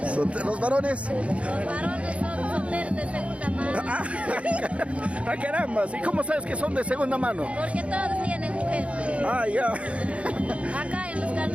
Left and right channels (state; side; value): late; left; 0.063 ms